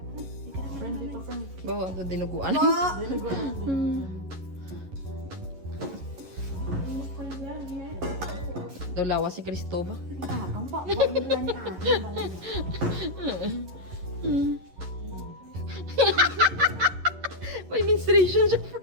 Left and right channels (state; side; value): late; left; 11 ms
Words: Friend dito, friend. Bawa, ito dinuguan. Daw lawas si Cristoba. Tapang pa. Huwag mo lang ni ate. May menstruation siya,